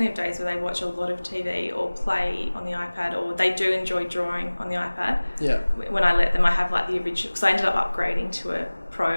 have days where they watch a lot of TV or play on the iPad, or they do enjoy drawing on the iPad. Yeah. When I let them, I have like the original, because I ended up upgrading to a Pro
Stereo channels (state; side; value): inverted; both; correlation -1.00